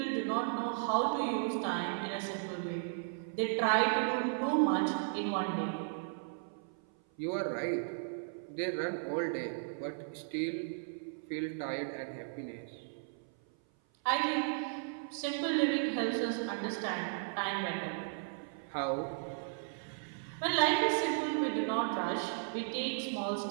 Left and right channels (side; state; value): left; silent; 54 dB below the other